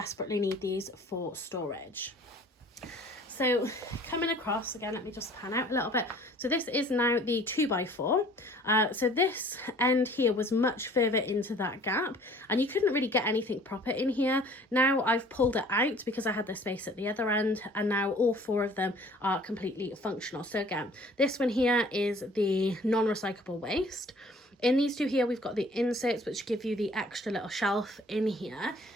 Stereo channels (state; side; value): normal; both; correlation 0.52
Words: need these for storage. So coming across, again, let me just pan out a little bit. So this is now the 2x4. So this end here was much further into that gap, and you couldn't really get anything proper in here. Now I've pulled it out because I had the space at the other end, and now all four of them are completely functional. So again, this one here is the non-recyclable waste. In these two here, we've got the inserts, which give you the extra little shelf in here.